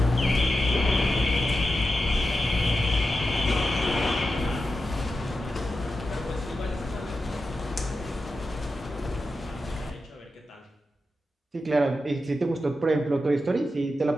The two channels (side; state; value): both; normal; correlation 0.90